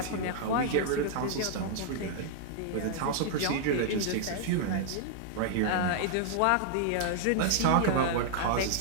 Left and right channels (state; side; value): different; both; correlation -0.01